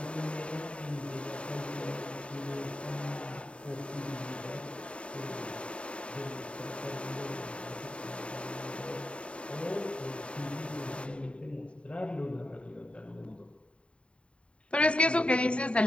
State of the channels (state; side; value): late; right; 0.059 ms